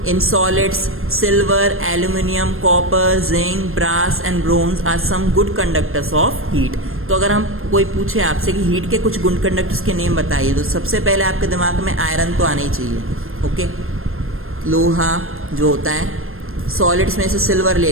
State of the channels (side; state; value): left; late; 0.61 ms